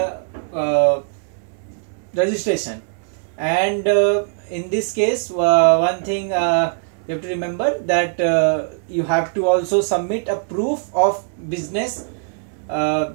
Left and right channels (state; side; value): silent; left; digital silence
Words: registration. And in this case, one thing you have to remember, that you have to also submit a proof of business.